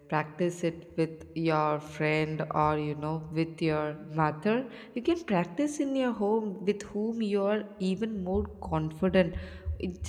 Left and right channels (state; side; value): identical; both; correlation 1.00